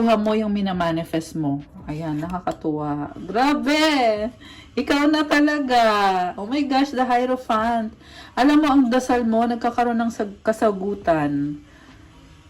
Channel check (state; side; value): identical; both; correlation 1.00